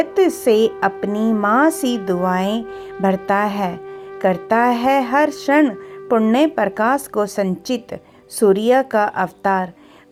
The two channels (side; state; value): both; identical; correlation 1.00